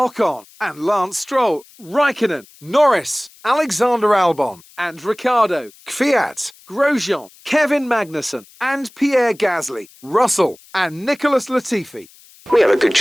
and Lance Stroll, Raikkonen, Norris, Alexander Albon and Ricciardo, Kvyat, Grosjean, Kevin Magnussen and Pierre Gasly, Russell and Nicholas Latifi. We have a good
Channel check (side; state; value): left; noise; hiss, 25 dB below the sound